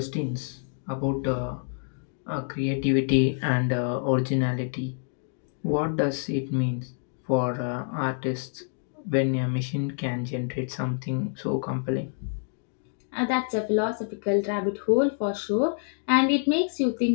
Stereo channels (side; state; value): right; silent; digital silence